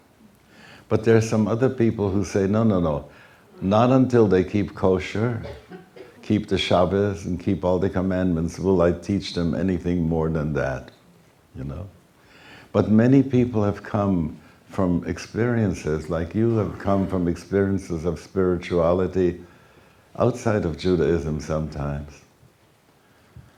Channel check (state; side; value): identical; both; correlation 1.00